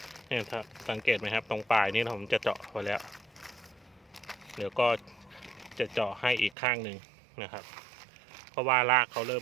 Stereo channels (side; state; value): left; drops out; at 6.6 s